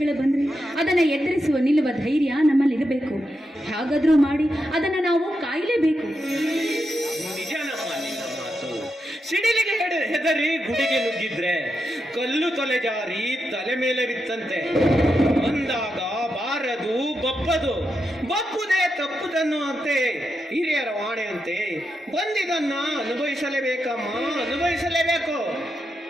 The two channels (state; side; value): normal; both; correlation 0.86